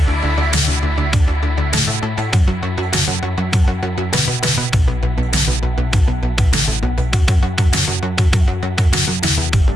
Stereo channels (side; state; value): both; normal; correlation 0.84